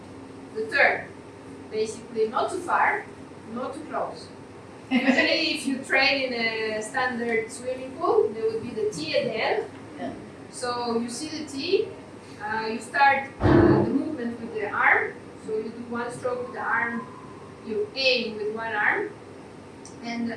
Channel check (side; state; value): both; identical; correlation 1.00